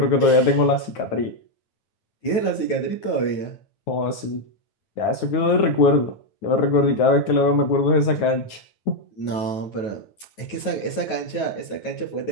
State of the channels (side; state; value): right; late; 9.4 ms